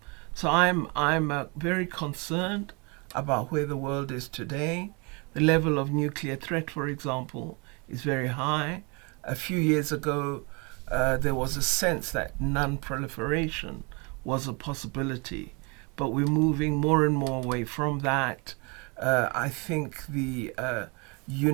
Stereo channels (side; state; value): left; quieter; 30.7 dB